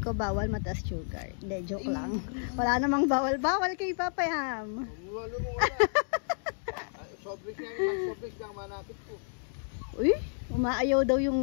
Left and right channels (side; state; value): right; silent; digital silence